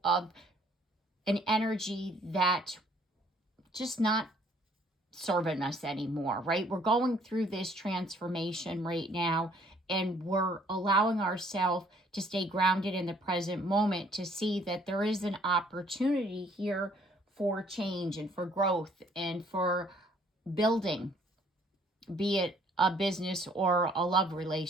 of an energy that just not serving us anymore, right? We're going through this transformation right now, and we're allowing ourselves to stay grounded in the present moment, to see that there is an opportunity here for change and for growth and for building, be it a business or a love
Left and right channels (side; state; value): both; normal; correlation 0.62